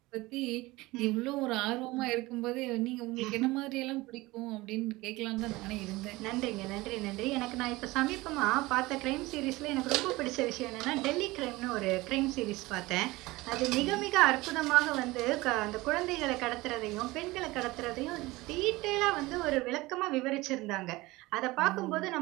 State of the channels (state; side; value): quieter; left; 20.6 dB